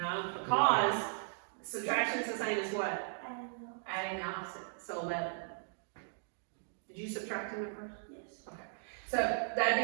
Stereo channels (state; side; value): silent; left; digital silence